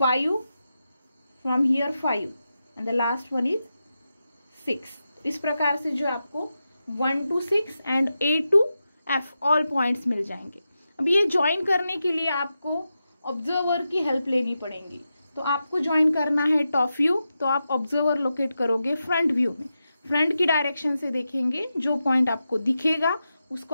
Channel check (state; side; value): inverted; both; correlation -0.89